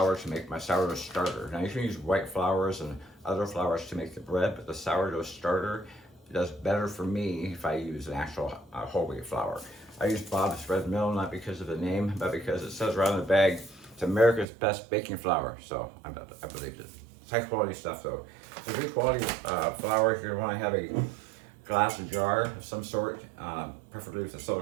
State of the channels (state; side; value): drops out; left; at 14.5 s